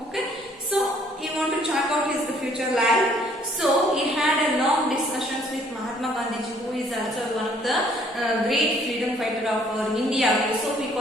Okay, so he want to check out his future life. So he had a long discussions with Mahatma Gandhi, who is also one of the great freedom fighter of India. So we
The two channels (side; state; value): both; normal; correlation 0.62